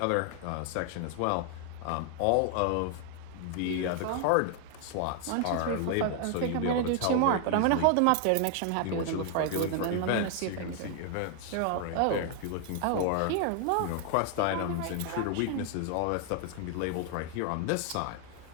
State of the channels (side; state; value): both; different; correlation 0.00